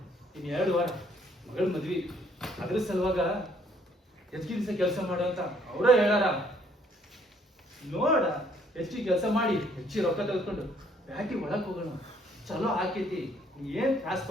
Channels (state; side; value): normal; both; correlation 0.65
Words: ಇನ್ 2 ವಾರ ಮಗಳ ಮದ್ವಿ. ಅದ್ರ ಸಲುವಾಗ ಹೆಚ್ಚಿಗೆ ದಿವಸ ಕೆಲಸ ಮಾಡೋ ಅಂತ ಅವರ ಹೇಳಾರ. ನೋಡ, ಹೆಚ್ಚಿಗೆ ಕೆಲಸ ಮಾಡಿ ಹೆಚ್ಚಿಗೆ ರೊಕ್ಕ ತೆಗೆದುಕೊಂಡು ಬ್ಯಾಟಿ ಒಳಗ್ ಹೋಗೋಣ. ಚಲೋ ಆಕೈತಿ, ನೀ ಏನ್ ತ್ರಾಸ್